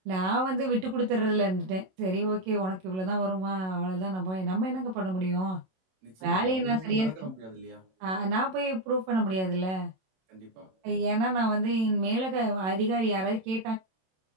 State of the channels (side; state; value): left; late; 27 ms